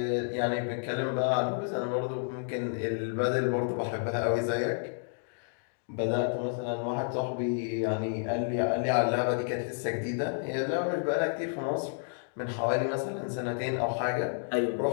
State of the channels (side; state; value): right; silent; digital silence